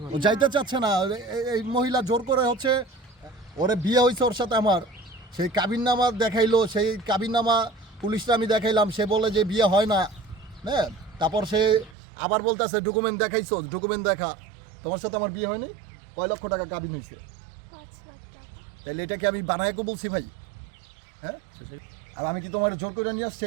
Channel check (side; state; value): left; drops out; at 12.0 s